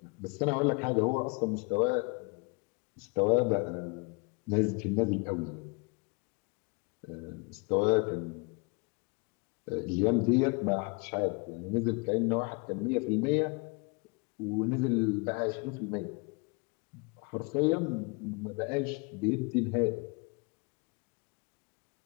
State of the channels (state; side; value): quieter; right; 30.8 dB